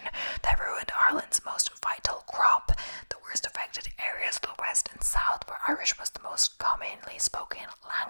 that ruined Ireland's most vital crop. The worst affected areas of the west and south, where Irish was the most commonly spoken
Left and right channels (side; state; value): both; inverted; correlation -1.00